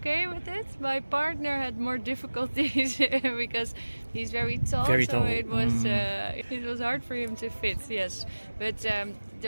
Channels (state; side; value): inverted; both; correlation -1.00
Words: with it. My partner had more difficulties because he's very tall. Very so tall. it was hard for him to fit. Yes, but